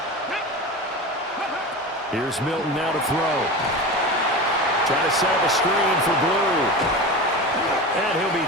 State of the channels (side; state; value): both; normal; correlation 0.28